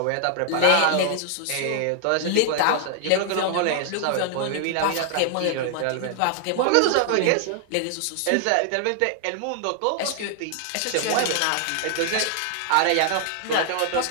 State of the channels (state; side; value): different; both; correlation 0.00